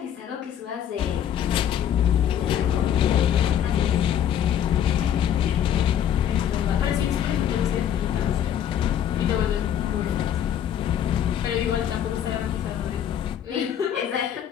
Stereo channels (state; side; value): quieter; right; 9.8 dB